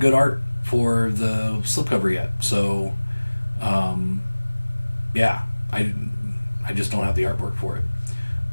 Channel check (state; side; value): inverted; both; correlation -1.00